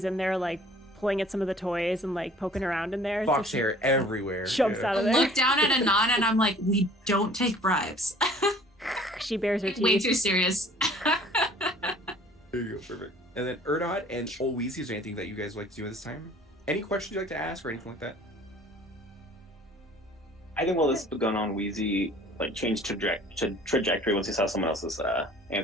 in there like pulling at some of the toys and like poking around in there. Fox she hair everywhere. jumps out I of there. look down at Anon and I'm like, we don't take bribes. She bares her Way teeth. too serious. There you go, perfect. And then Erdod and Old Weezy, is there anything that you guys would like to do at this time? Any questions you'd like to ask or anything like that? I think while this is going on, Wheezy like changed trajectory once he saw someone else is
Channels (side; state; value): both; normal; correlation 0.51